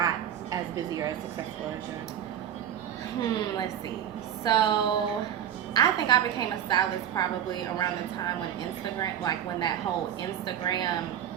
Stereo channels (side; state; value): left; quieter; 10.0 dB